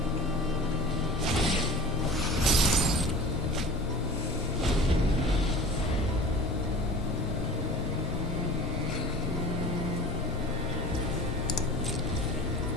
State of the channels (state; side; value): normal; both; correlation 0.41